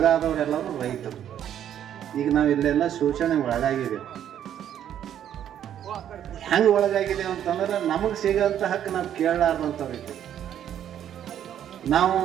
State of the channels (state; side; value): quieter; left; 10.2 dB